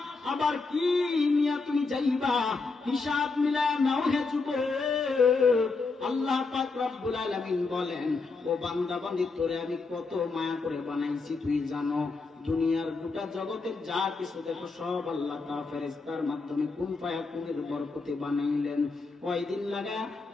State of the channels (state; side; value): quieter; right; 4.0 dB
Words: আবার কি নিয়ে তুমি যাইবা, হিসাব মিলায় নাও হে যুবক। আল্লাহ পাক রব্বুল আলামিন বলেন, ও বান্দা বান্দি, তোরে আমি কত মায়া করে বানাইছি তুই জানো? দুনিয়ার গোটা জগতের যা কিছু দেখো সব আল্লাহ তাআলা ফেরেশতার মাধ্যমে কুন ফায়াকুনের বরকতে বানাইলেন। কয়দিন লাগায়?